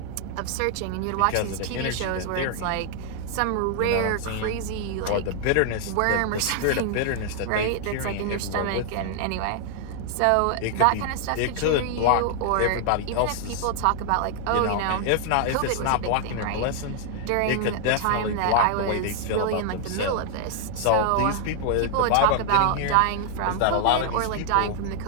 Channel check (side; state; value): both; different; correlation 0.00